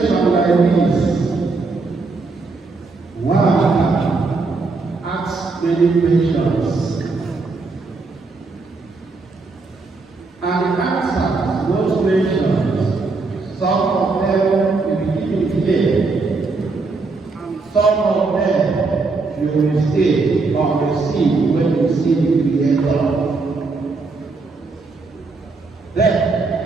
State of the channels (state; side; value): quieter; left; 3.9 dB